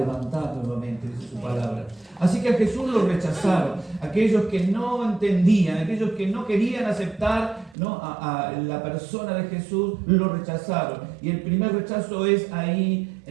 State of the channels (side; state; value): left; drops out; at 7.8 s